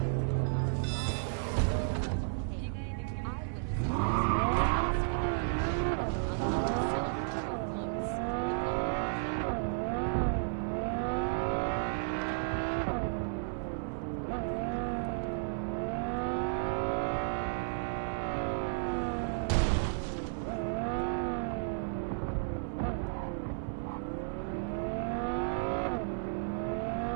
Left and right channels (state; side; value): silent; left; 56 dB below the other